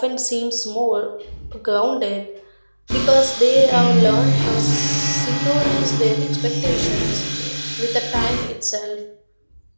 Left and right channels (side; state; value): both; inverted; correlation -1.00